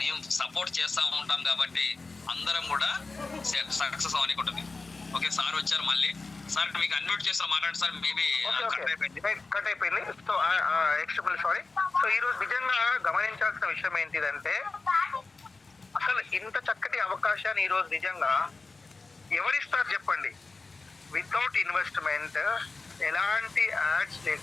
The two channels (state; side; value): quieter; right; 3.8 dB